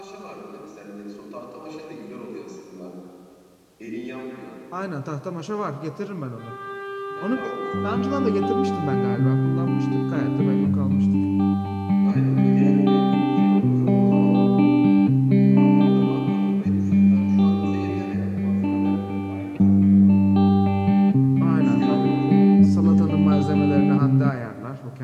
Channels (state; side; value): identical; both; correlation 1.00